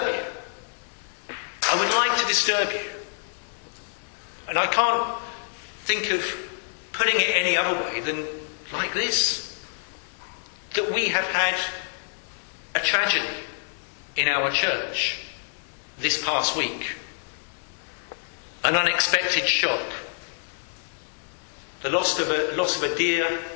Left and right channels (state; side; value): silent; right; digital silence